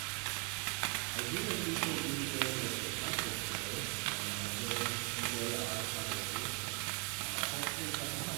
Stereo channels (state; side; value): quieter; left; 35.6 dB